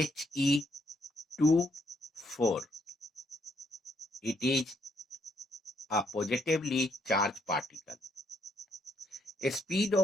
It is a positively charged particle. A speed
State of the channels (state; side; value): normal; both; correlation 0.73